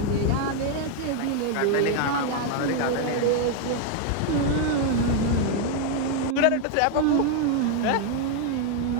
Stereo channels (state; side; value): different; both; correlation 0.00